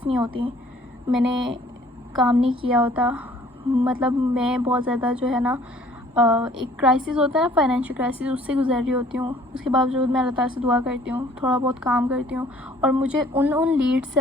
नहीं होती, मैंने काम नहीं किया होता, मतलब मैं बहुत ज़्यादा जो है ना एक क्राइसिस होता है ना, फाइनेंशियल क्राइसिस, उससे गुजर रही होती हूँ। उसके बावजूद मैं अल्लाह ताला से दुआ करती हूँ, थोड़ा बहुत काम करती हूँ, और मुझे उन लीड्स से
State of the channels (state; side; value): normal; both; correlation 0.56